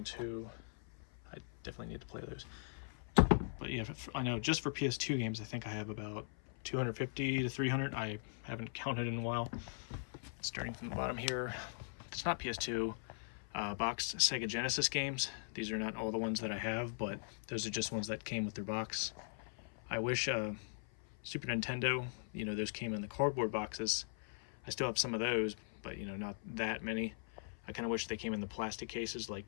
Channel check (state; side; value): silent; right; 51 dB below the other